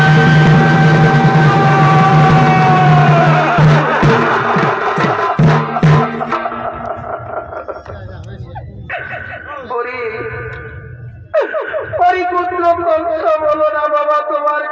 বলো না বাবা, তোমার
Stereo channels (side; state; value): both; identical; correlation 1.00